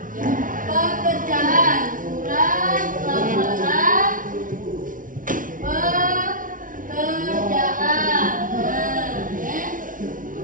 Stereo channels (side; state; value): left; late; 0.39 ms